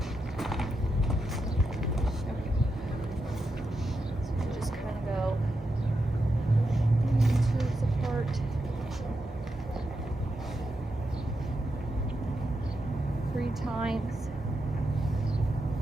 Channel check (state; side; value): normal; both; correlation 0.86